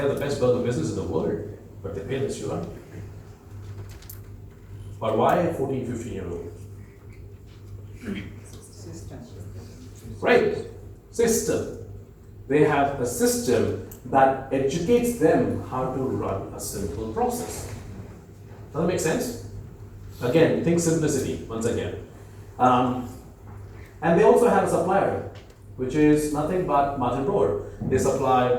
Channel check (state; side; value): identical; both; correlation 1.00